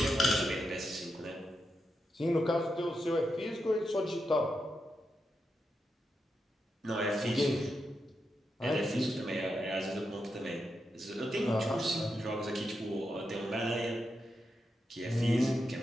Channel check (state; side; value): normal; both; correlation 0.86